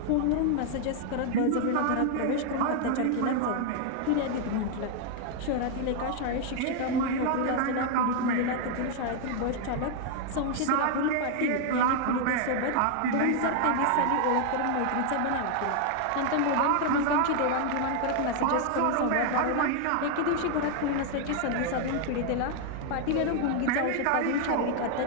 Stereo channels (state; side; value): different; both; correlation 0.00